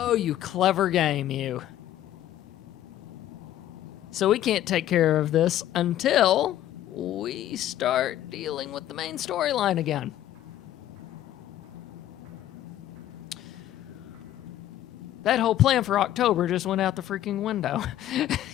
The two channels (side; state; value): right; quieter; 12.6 dB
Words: you clever game, you. So we can't take care of this until we start dealing with the main storyline again. That whole plan for October just went out the freaking window.